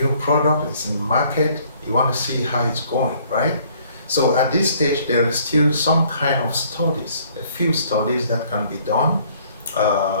product, it's in market, you want to see how it's going, right? So at this stage, there is still some kind of studies, a few studies that can be done,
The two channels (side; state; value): both; inverted; correlation -0.60